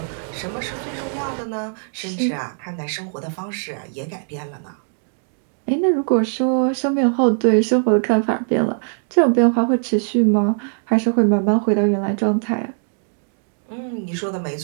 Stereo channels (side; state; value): left; silent; 65 dB below the other